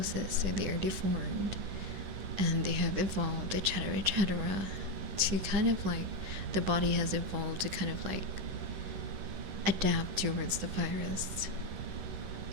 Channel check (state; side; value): late; left; 10 ms